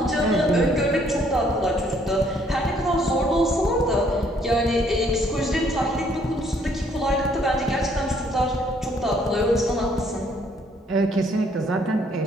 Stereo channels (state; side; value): normal; both; correlation 0.65